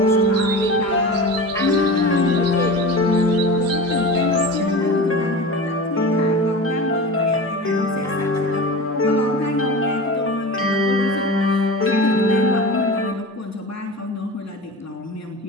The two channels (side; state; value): both; normal; correlation 0.31